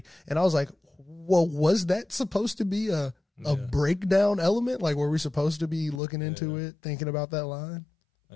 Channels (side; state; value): right; drops out; at 6.0 s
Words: And I was like, well, was that supposed to be a breakdown element? Like, were we supposed to be looking into it, thinking about that line?